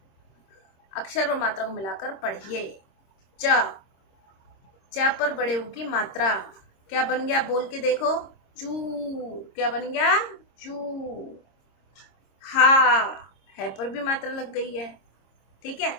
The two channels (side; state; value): right; late; 26 ms